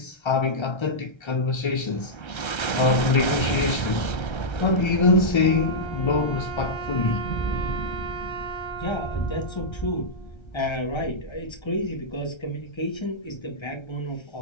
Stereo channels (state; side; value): late; right; 1.3 ms